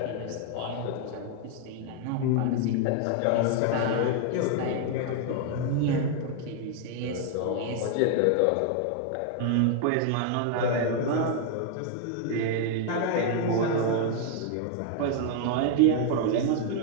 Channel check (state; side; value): different; both; correlation 0.00